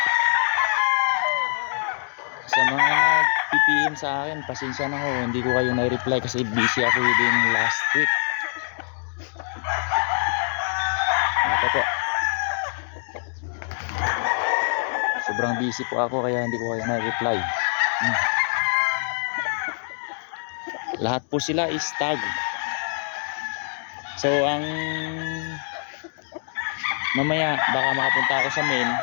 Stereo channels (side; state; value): right; silent; digital silence